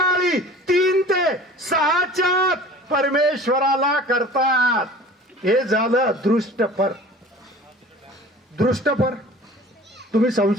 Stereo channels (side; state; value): both; normal; correlation 0.43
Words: 3 ते 6च्या परमेश्वराला करतात. हे झालं दृष्टपर. दृष्टपर तुम्ही